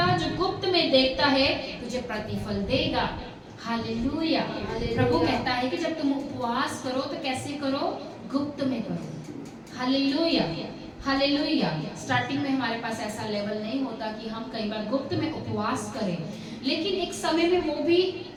जो गुप्त में देखता है तुझे प्रतिफल देगा। हालेलुया। प्रभु कहता है कि जब तुम उपवास करो तो कैसे करो? गुप्त में करो। हालेलुया। हालेलुया। स्टार्टिंग में हमारे पास ऐसा लेवल नहीं होता कि हम कई बार गुप्त में उपवास करें, लेकिन एक समय में वो भी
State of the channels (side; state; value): both; identical; correlation 1.00